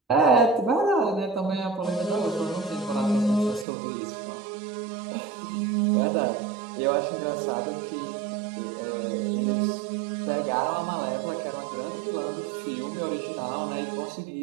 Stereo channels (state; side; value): drops out; left; at 3.7 s